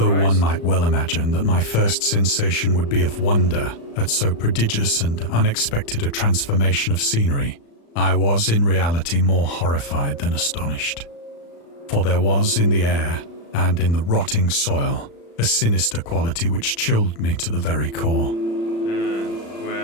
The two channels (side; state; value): right; late; 35 ms